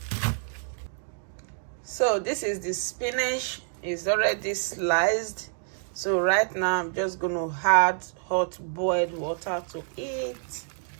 So this is the spinach, is already sliced. So right now I'm just going to add hot boiled water to it.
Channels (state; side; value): silent; left; 58 dB below the other